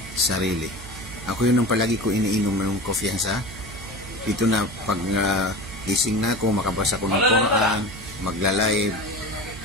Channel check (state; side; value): noise; right; hum, 15 dB below the sound